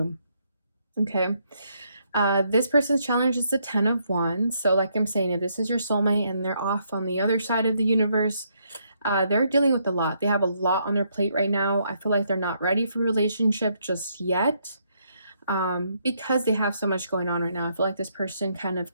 Okay. This person's challenge is the 10 of Wands. So like I'm saying, if this is your soulmate and they're off on the other side of the universe, they're dealing with a lot. They have a lot on their plate right now. I feel like they're not ready for a relationship just yet. Because they have so much going on right now. I feel like this person kind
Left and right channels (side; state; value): both; inverted; correlation -0.74